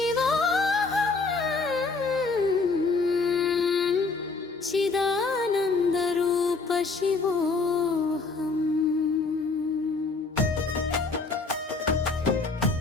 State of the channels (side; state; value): right; quieter; 4.1 dB